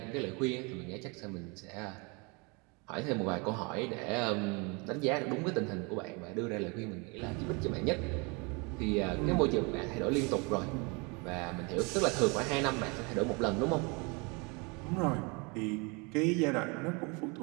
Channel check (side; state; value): left; quieter; 30.0 dB